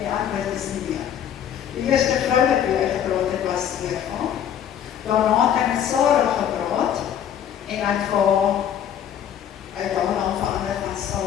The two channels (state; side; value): quieter; right; 9.5 dB